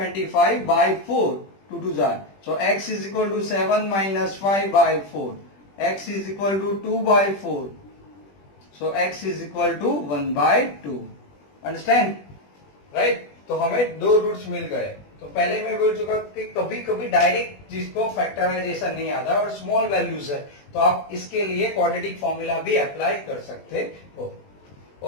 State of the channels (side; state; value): right; late; 20 ms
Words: by 4, 2 2 जार, so x is equal to 7 minus 5 by 4, x is equal to 2 by 4, so x is equal to 1 by 2, understand? right? तो हमें दो roots मिल गए। तो पहले मैं बोल चुका कि कभी कभी डायरेक्ट जिसको फैक्टराइजेशन नहीं आता और स्मॉल वैल्यूज है तो आप इसके लिए क्वाड्रेटिक फॉर्मूला भी अप्लाई कर सकते हो।